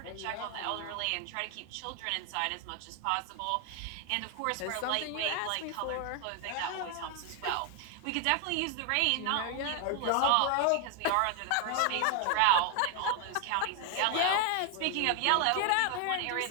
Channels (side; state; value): both; different; correlation 0.00